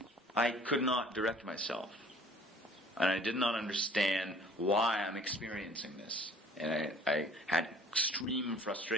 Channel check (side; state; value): both; normal; correlation 0.52